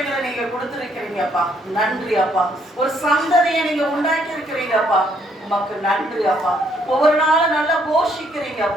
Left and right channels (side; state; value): both; normal; correlation 0.69